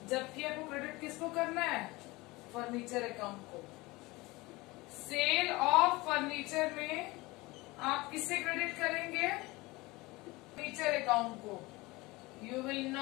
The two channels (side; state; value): right; quieter; 22.1 dB